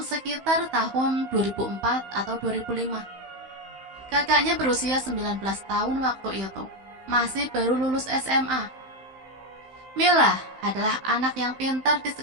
tahun 2004 atau 2005. Kakaknya berusia 19 tahun waktu itu, masih baru lulus SMA. Mila adalah anak yang pintar di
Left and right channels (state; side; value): late; left; 15 ms